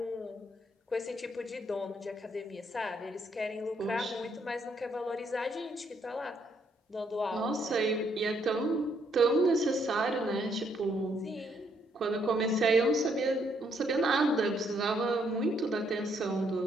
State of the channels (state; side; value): normal; both; correlation 0.72